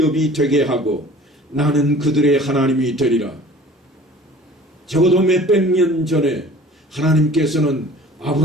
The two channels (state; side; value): normal; both; correlation 0.46